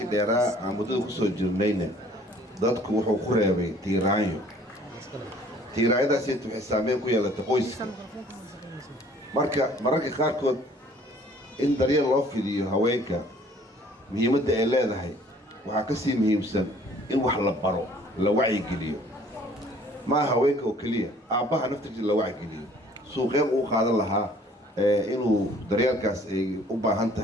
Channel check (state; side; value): normal; both; correlation 0.55